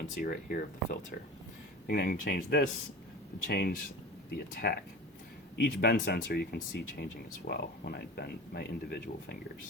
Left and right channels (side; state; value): both; normal; correlation 0.34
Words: right here of the filter. And I can change this to change the attack. Each bend sensor you can see changing as well when I bend my individual